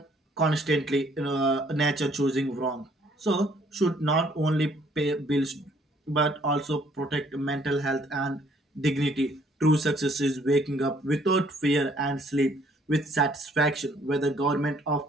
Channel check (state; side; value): normal; both; correlation 0.63